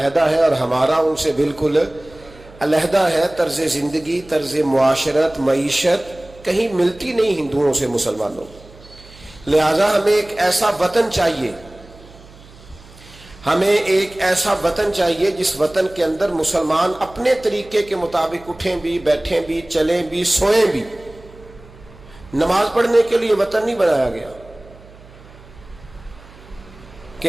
ہے اور ہمارا ان سے بالکل علیحدہ ہے. طرز زندگی، طرز معاشرت، معیشت کہیں ملتی نہیں ہندوؤں سے مسلمانوں. لہذا ہمیں ایک ایسا وطن چاہیے، ہمیں ایک ایسا وطن چاہیے جس وطن کے اندر مسلمان اپنے طریقے کے مطابق اٹھیں بھی، بیٹھیں بھی، چلیں بھی، سوئیں بھی. نماز پڑھنے کے لیے وطن نہیں بنایا گیا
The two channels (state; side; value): noise; right; hum, 22 dB below the sound